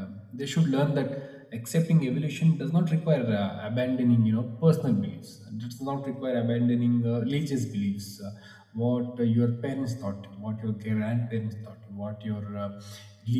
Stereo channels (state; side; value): identical; both; correlation 1.00